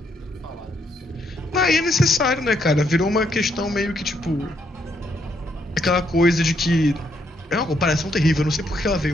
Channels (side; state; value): both; normal; correlation 0.74